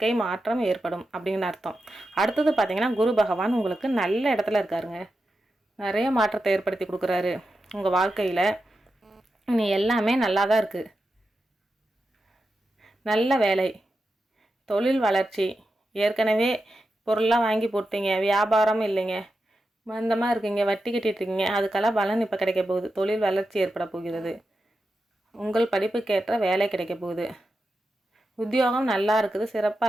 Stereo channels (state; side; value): normal; both; correlation 0.90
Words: மாற்றம் ஏற்படும் அப்படின்னு அர்த்தம். அடுத்தது பார்த்திங்கன்னா, குரு பகவான் உங்களுக்கு நல்ல இடத்துல இருக்காருங்க. நிறைய மாற்றத்தை ஏற்படுத்தி கொடுக்குறாரு. உங்கள் வாழ்க்கையில் இனி எல்லாமே நல்லா தான் இருக்குது. நல்ல வேலை, தொழில் வளர்ச்சி, ஏற்கனவே பொருள்லாம் வாங்கி போட்டீங்க, வியாபாரம் இல்லைங்க, மந்தமாக இருக்கீங்க, வட்டி கட்டிட்டுருக்கீங்க, அதுக்கெல்லாம் பலன் இப்போ கிடைக்க போகுது. தொழில் வளர்ச்சி ஏற்பட போகிறது. உங்கள் படிப்புக்கேற்ற வேலை கிடைக்க போகுது. உத்தியோகம் நல்லா இருக்குது,